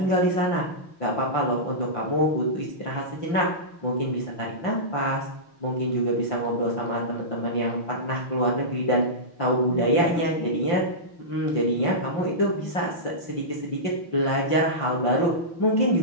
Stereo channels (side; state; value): right; late; 5.8 ms